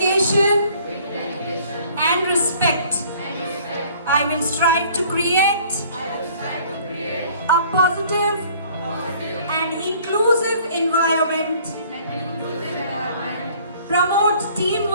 and respect. I will strive to create a positive and inclusive environment, promote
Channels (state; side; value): inverted; both; correlation -0.55